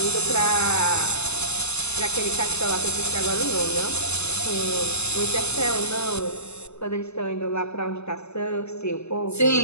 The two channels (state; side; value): late; right; 0.80 ms